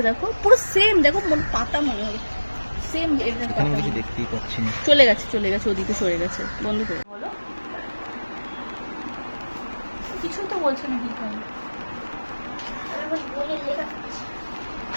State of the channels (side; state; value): both; inverted; correlation -1.00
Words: দেখো, পুরো সেম। দেখো পাতা মনে হয় সেম। এখানে কিছু দেখতেই পাচ্ছি না। চলে গেছে চলে গেছে, ওদিকে সরে গেছে। বন্ধ করে বলো, কিছু তো বলছে না। কি করে